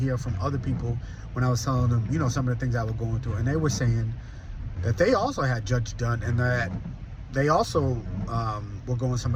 from other people when I was telling them, some of the things I was going through, and they were saying that they also had Judge Dunn, and that they also were going some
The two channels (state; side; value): identical; both; correlation 1.00